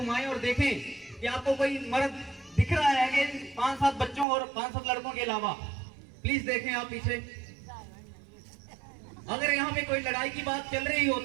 और देखें कि आपको कोई मर्द दिख रहा है कि 5-7 बच्चों और 5-7 लड़कों के अलावा? प्लीज देखें आप पीछे। अगर यहाँ पे कोई लड़ाई की बात चल रही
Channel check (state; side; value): drops out; left; at 4.2 s